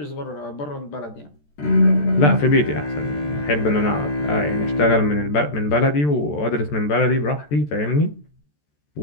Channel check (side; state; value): right; late; 14 ms